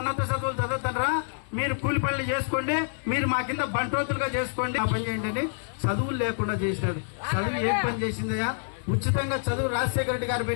చదువులు చదువుతారా, మీరు కూలి పనులు చేసుకోండి, మీరు మా కింద బంట్రోతులుగా చేసుకోండి, ఆ పని చేయండి అని చదువులు లేకుండా చేసినాడు. చదువు ఏం పని చేసిందయ్యా? ఉచితంగా చదువు రాజశేఖర రెడ్డి గారు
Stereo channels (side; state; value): right; silent; 60 dB below the other